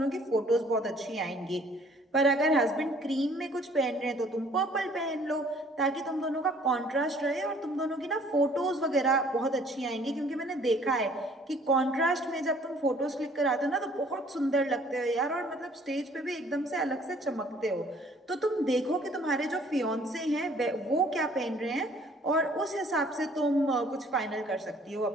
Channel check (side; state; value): both; normal; correlation 0.57